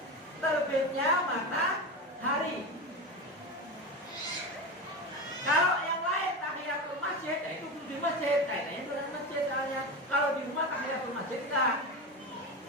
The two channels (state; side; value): normal; both; correlation 0.21